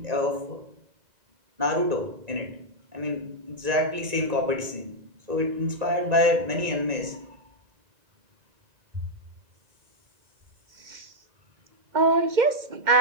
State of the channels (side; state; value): left; late; 1.9 ms